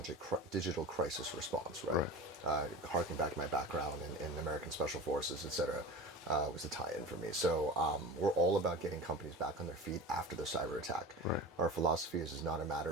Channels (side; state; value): both; normal; correlation 0.32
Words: digital crisis response, right? Harking back to my background in American Special Forces, et cetera, was the tie-in for me. So we're all about getting companies back on their feet after the cyber attack. Our philosophy is not a